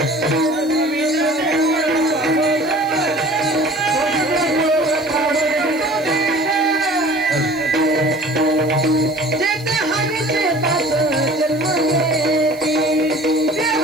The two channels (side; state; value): right; noise; hiss, 23 dB below the sound